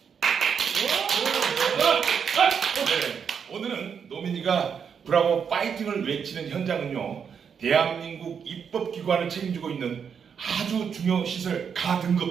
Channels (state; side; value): quieter; left; 7.0 dB